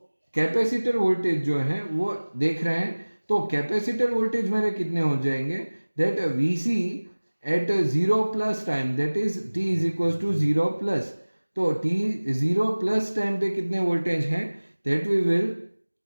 कैपेसिटर वोल्टेज जो है वो देख रहे हैं। तो कैपेसिटर वोल्टेज मेरे कितने हो जाएंगे, that Vc at 0 plus time, that is t is equal to 0 plus, तो t 0 प्लस टाइम पे कितने वोल्टेज हैं, दैट वी विल,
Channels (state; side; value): inverted; both; correlation -1.00